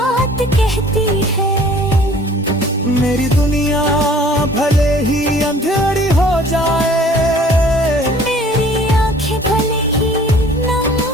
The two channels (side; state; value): both; normal; correlation 0.52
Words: कहती है। मेरी दुनिया भले ही अंधेरी हो जाए, मेरी आंखें भले ही नम